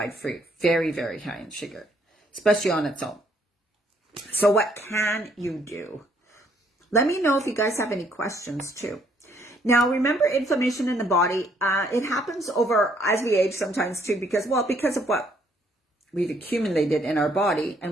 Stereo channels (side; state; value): both; normal; correlation 0.67